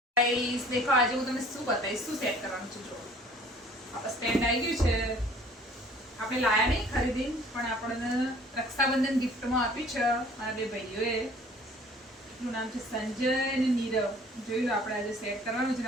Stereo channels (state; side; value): normal; both; correlation 0.53